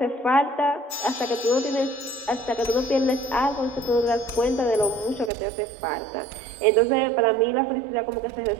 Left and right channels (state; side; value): drops out; left; at 5.3 s